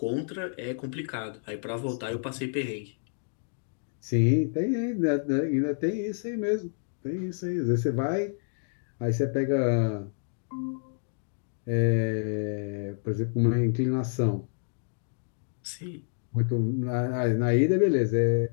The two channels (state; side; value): silent; right; digital silence